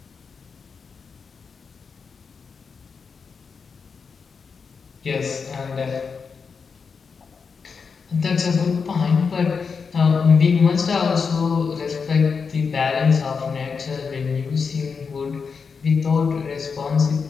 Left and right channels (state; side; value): quieter; right; 5.5 dB